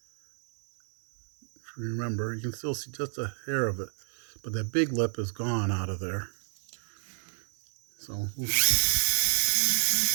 If you remember, you can still see just a hair of it, but that big lip is gone out of there. So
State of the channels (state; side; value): silent; left; digital silence